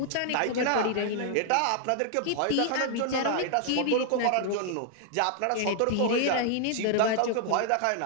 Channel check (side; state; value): both; different; correlation 0.00